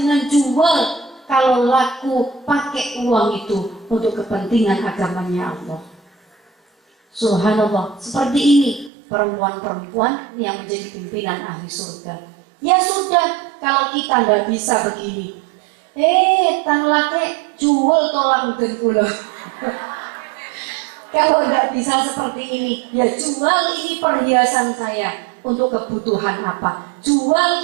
jual, kalau laku pakai uang itu untuk kepentingan agamanya Allah. Subhanallah, seperti ini perempuan-perempuan yang menjadi pimpinan ahli surga. Ya sudah, kalau kita nggak bisa begini, tan lake jual tulang dan kula. Kalau nggak bisa seperti ini, ya jual ini perhiasan saya untuk kebutuhan apa?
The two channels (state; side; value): drops out; left; at 8.9 s